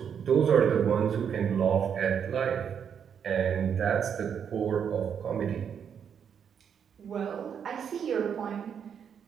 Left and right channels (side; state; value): left; quieter; 7.7 dB